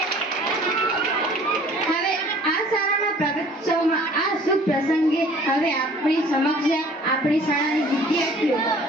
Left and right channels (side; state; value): both; normal; correlation 0.52